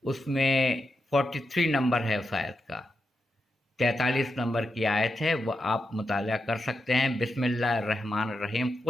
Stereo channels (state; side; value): normal; both; correlation 0.86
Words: اس میں 43 نمبر ہے اس آیت کا، 43 نمبر کی آیت ہے، وہ آپ مطالعہ کر سکتے ہیں۔ بسم اللہ الرحمن الرحیم